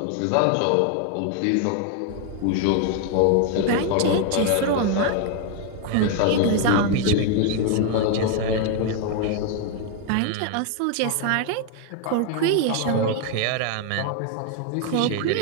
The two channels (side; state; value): both; different; correlation 0.00